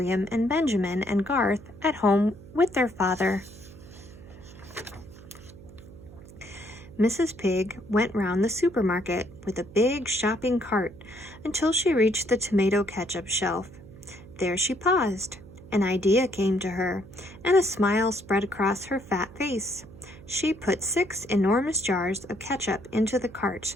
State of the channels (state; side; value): noise; right; hum, 18 dB below the sound